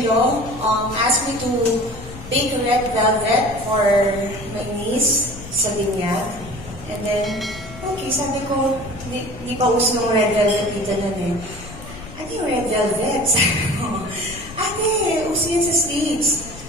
asked me to bake red velvet for my niece sa binyag. And then, okay, sabi ko, hindi pa uso ng red velvet dito nun eh. Ano yung red velvet? Sabi ko, ate, uso yan sa States.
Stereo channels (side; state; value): left; noise; rumble, 15 dB below the sound